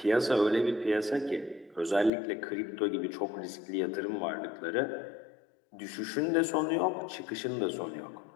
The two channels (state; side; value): drops out; right; at 2.1 s